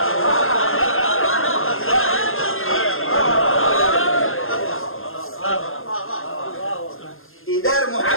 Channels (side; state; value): right; late; 0.60 ms